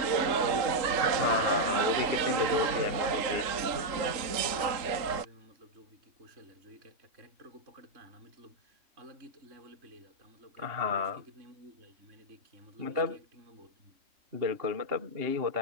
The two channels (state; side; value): late; left; 3.7 ms